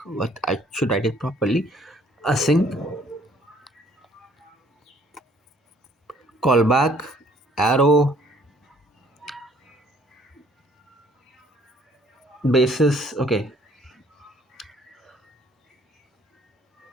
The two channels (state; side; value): normal; both; correlation 0.60